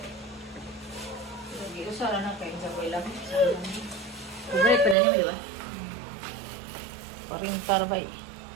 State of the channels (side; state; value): left; drops out; at 5.0 s